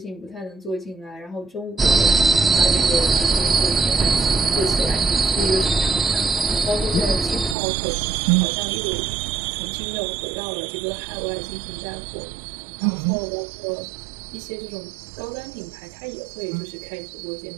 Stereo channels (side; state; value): left; drops out; at 7.6 s